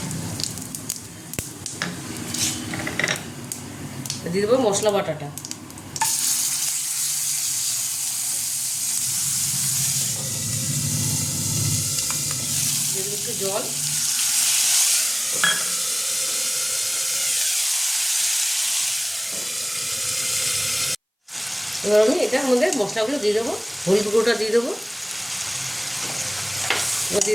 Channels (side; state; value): both; identical; correlation 1.00